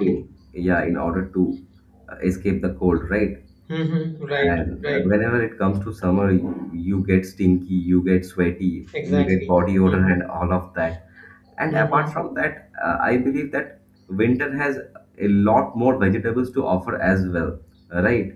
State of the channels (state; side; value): identical; both; correlation 1.00